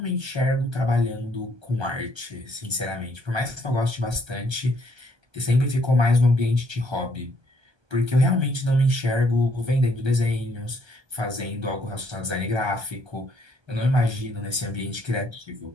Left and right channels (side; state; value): left; late; 1.3 ms